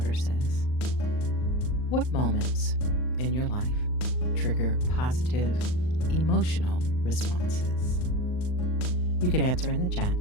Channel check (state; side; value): late; right; 39 ms